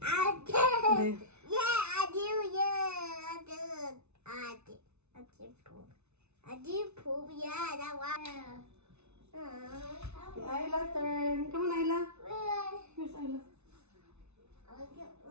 Okay. Ayla, turn. Come on, Ayla. Where's Ayla?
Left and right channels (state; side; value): late; left; 0.81 ms